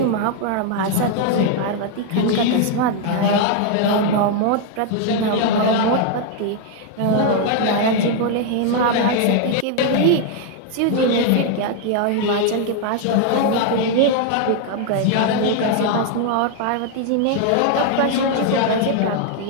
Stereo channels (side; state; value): both; different; correlation 0.00